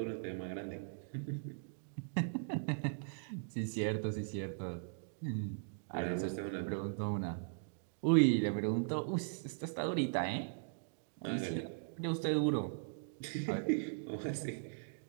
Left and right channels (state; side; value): silent; left; digital silence